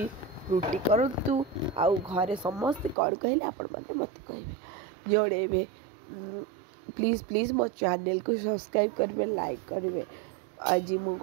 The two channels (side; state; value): left; drops out; at 3.0 s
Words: रुटी करूँ आउ घरे समस्ते कौन कहले आपण मैंने मत कहे जोड़े। प्लीज़ प्लीज़ मो चैनल को सब्सक्राइब करेंगे, लाइक करेंगे। आज